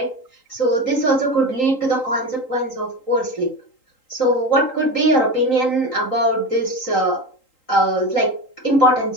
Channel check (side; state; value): right; late; 3.8 ms